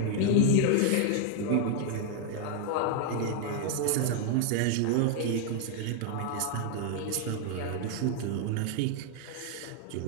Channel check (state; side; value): different; both; correlation 0.00